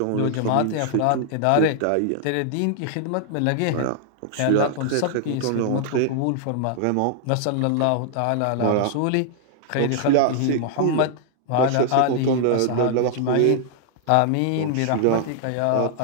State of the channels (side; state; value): both; different; correlation 0.00